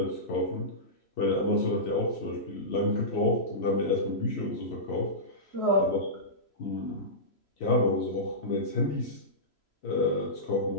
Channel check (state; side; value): late; right; 3.0 ms